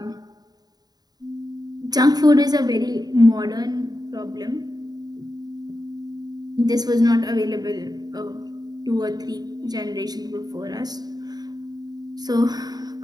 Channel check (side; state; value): left; late; 0.19 ms